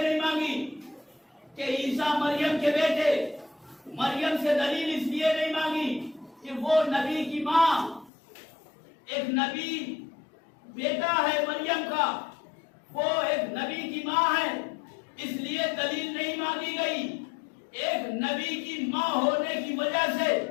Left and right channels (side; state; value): right; drops out; at 8.1 s